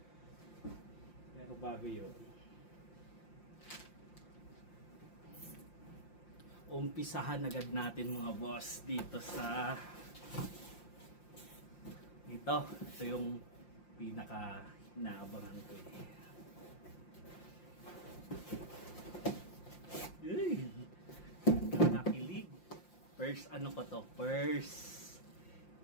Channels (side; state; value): right; late; 5.7 ms